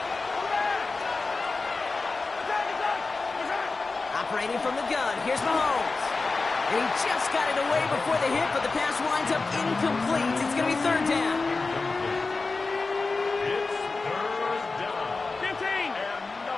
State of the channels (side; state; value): right; quieter; 3.9 dB